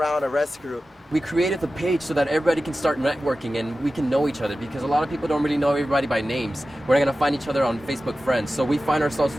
Arrest Group. We created the page so that everybody can start networking and we can know each other because a lot of people don't really know everybody by names. We're not going to find each other on Facebook friends. So we find ourselves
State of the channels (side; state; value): both; normal; correlation 0.94